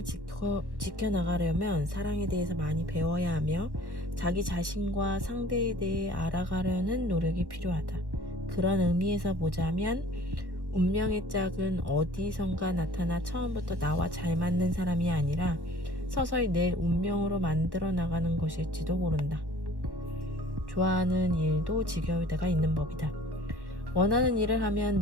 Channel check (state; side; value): late; left; 1.1 ms